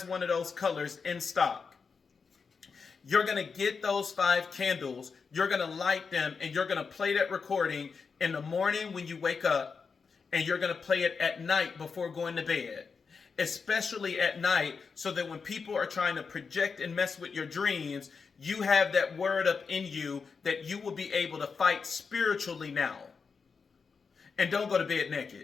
one of those colors in stock. You're going to get those 5 candles, you're going to light them, and you're going to play that recording in the morning when you wake up, and you're going to play it at night before going to bed, especially at night, so that when people are trying to project and mess with your dreams, you have that word up in you that you will be able to fight spiritually now. And don't go to bed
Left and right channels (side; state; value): right; quieter; 5.3 dB